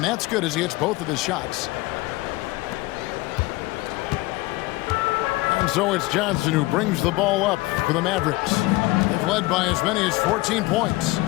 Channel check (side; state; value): right; quieter; 20.6 dB